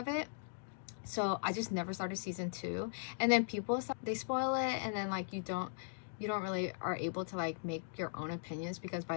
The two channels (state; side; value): silent; right; digital silence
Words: it. So I just never started season 2. And then people, they spoil it, and then like you don't really are able to like make your own opinions because by